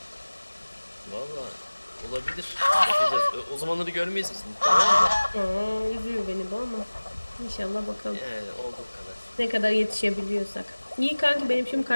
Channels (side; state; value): both; inverted; correlation -1.00